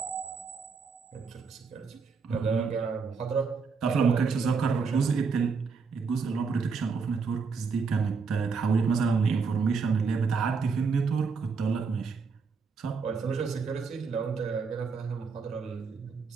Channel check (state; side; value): quieter; left; 5.1 dB